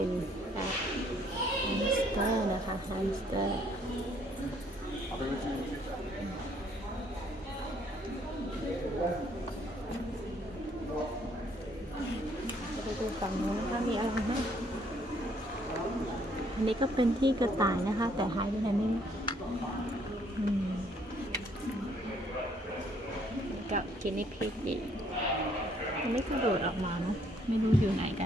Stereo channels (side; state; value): both; normal; correlation 0.66